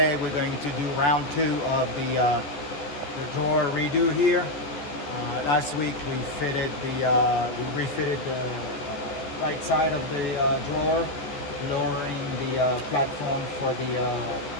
we're going to do round 2 of the drawer redo here. Last week we refitted the right side of the drawer, lowering the platform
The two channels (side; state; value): right; late; 14 ms